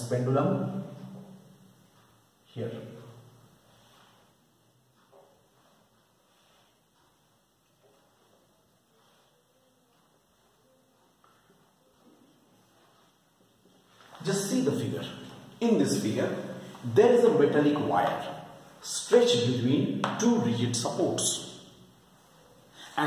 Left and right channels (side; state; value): both; identical; correlation 1.00